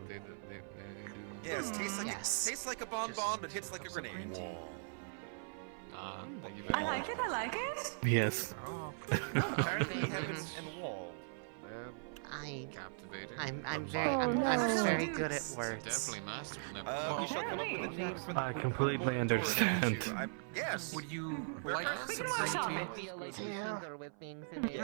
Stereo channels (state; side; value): silent; left; 52 dB below the other